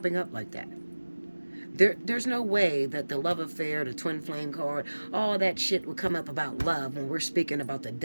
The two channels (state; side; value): inverted; both; correlation -1.00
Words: up like that. There's no way that the love affair, the twin flame card, all that shit would come up about love when we're speaking about the